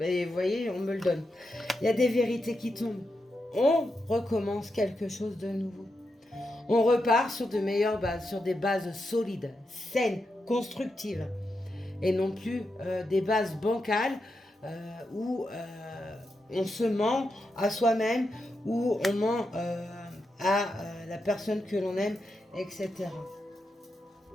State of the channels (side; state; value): both; normal; correlation 0.86